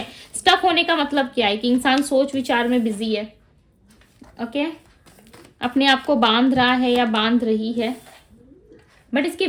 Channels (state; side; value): identical; both; correlation 1.00